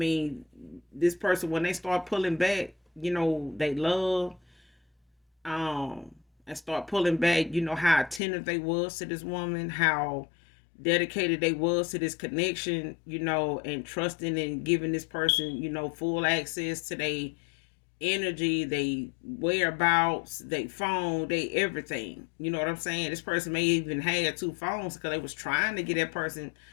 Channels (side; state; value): right; drops out; at 8.2 s